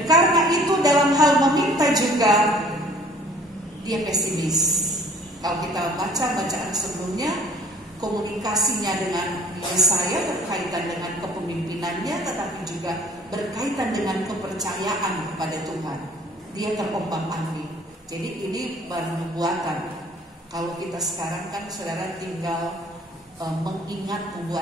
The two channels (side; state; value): both; normal; correlation 0.53